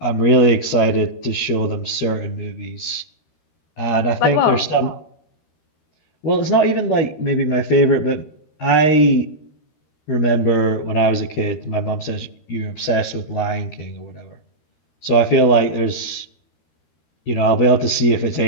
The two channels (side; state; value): right; late; 13 ms